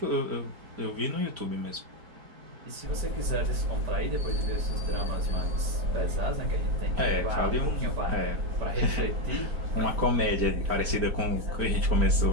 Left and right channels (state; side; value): late; left; 4.4 ms